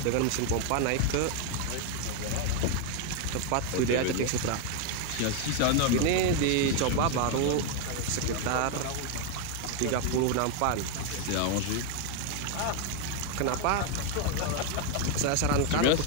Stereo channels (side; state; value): both; different; correlation 0.01